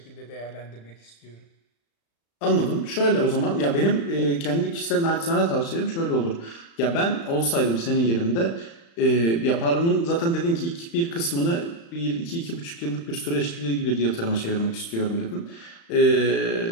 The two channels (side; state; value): right; late; 35 ms